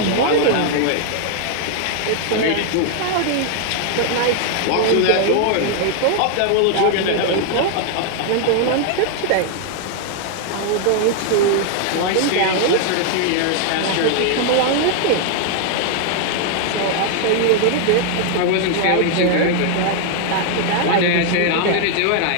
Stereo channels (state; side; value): different; both; correlation 0.00